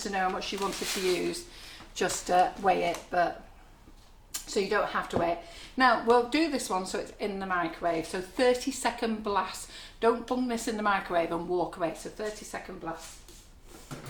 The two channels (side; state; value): both; identical; correlation 1.00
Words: know how much you wanted to use, just weigh it, but so you don't have to weigh it. Now we'll do this one so it's in the microwave. So 30-second blast. Don't bung this in the microwave and walk away. So 30-second blast.